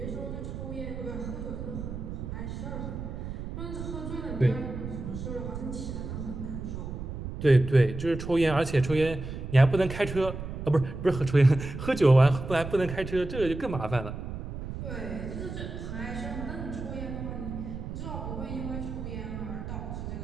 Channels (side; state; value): right; noise; rumble, 7 dB below the sound